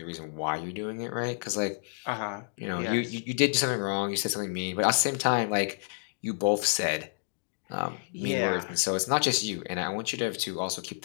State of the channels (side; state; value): right; silent; digital silence